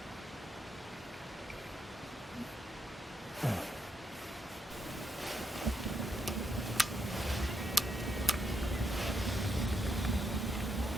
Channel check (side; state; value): both; normal; correlation 0.80